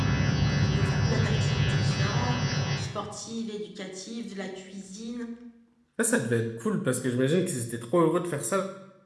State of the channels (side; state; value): both; identical; correlation 1.00